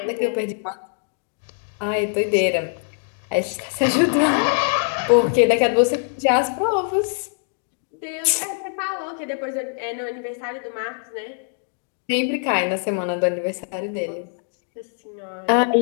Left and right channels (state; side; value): silent; right; 63 dB below the other